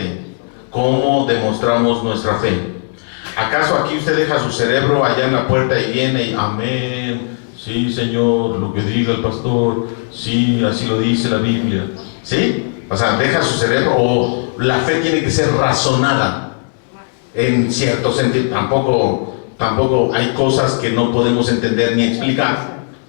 ¿cómo demostramos nuestra fe? ¿Acaso aquí usted deja su cerebro allá en la puerta y viene y amén? Sí, Señor, lo que diga el pastor. Sí, así lo dice la Biblia. ¿Sí? O sea, deja su cerebro, o la fe tiene que ser razonada en cierto sentido. Tampoco hay cosas que no podemos entender ni explicar.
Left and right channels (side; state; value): right; silent; digital silence